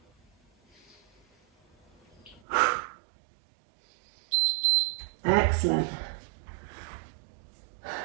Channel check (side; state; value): left; drops out; at 2.4 s